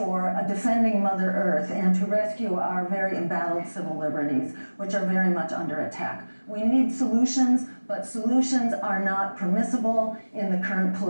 defending Mother Earth, and to rescue our very embattled civil liberties, which are very much under attack. We need solutions, but solutions are not permissible in the current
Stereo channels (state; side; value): inverted; both; correlation -1.00